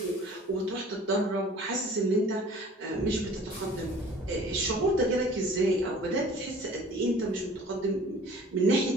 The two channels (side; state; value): both; normal; correlation 0.48